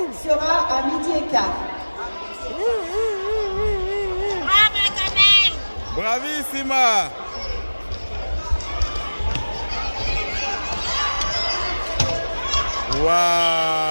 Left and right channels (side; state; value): both; inverted; correlation -1.00